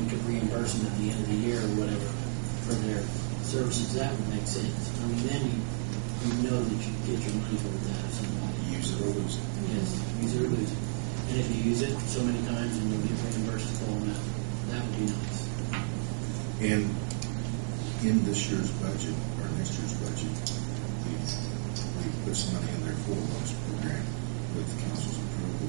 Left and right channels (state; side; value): silent; left; digital silence